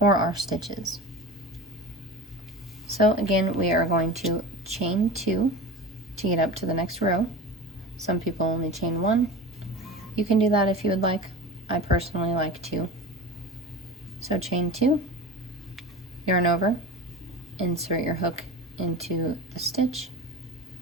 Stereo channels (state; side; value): normal; both; correlation 0.32